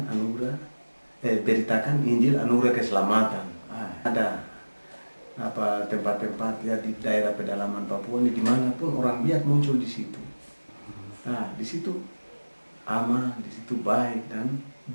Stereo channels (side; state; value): both; inverted; correlation -1.00